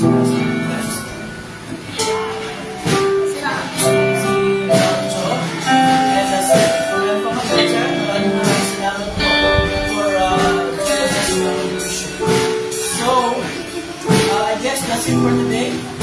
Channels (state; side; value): identical; both; correlation 1.00